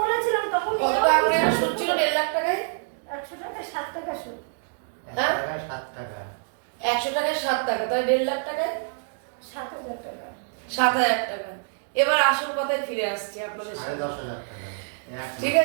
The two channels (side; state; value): left; silent; digital silence